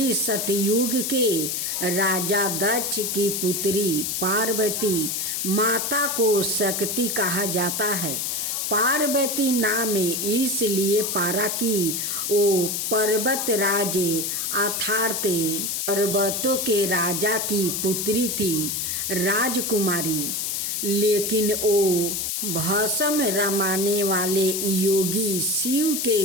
सतयुग के राजा दक्ष की पुत्री पार्वती माता को शक्ति कहा जाता है। पार्वती नाम इसलिए पारा कि वो पर्वतराज अर्थात पर्वतों के राजा की पुत्री थी, राजकुमारी। लेकिन वो भस्म रमाने वाले योगी शिव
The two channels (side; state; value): left; noise; hiss, 1 dB below the sound